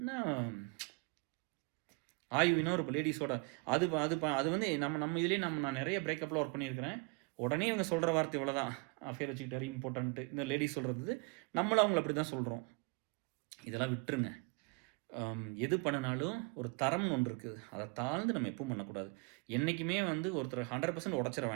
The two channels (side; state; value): left; quieter; 31.4 dB